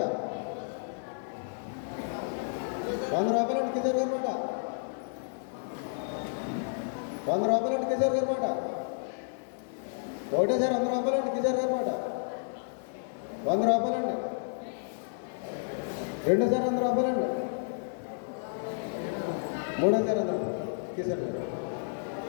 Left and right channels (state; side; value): silent; right; digital silence